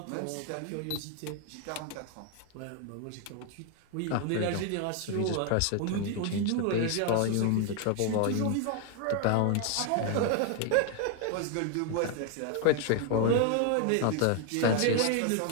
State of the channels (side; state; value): both; different; correlation 0.01